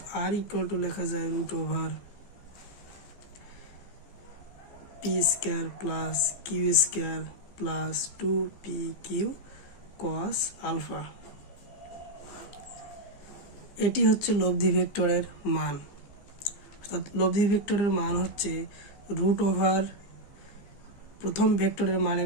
আর ইকুয়াল টু লেখা যায় root over P square plus Q square plus 2p cos alpha. এটি হচ্ছে লব্ধি ভেক্টরের মান, অর্থাৎ লব্ধি ভেক্টরের মান হচ্ছে রুট ওভার প্রথম ভেক্টরের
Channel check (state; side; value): late; right; 15 ms